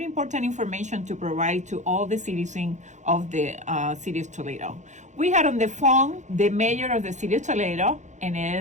important information to provide to all the citizens of the city of Toledo. We had on the phone the mayor of the city of Toledo, and it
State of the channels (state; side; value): late; left; 0.35 ms